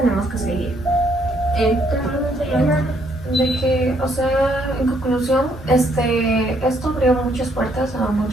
que seguir. De que, o sea, en conclusión, esto abrió muchas puertas a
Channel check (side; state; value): both; normal; correlation 0.70